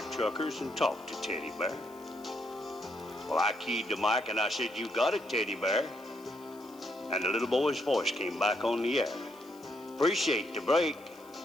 truckers, and talk to Teddy Bear." Well, I keyed the mic and I said, "You got it, Teddy Bear." And the little boy's voice came back on the air. "Appreciate the break.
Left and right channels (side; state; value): left; noise; hiss, 26 dB below the sound